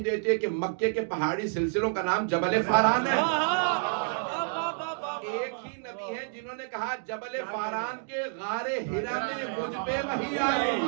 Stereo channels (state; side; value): silent; left; digital silence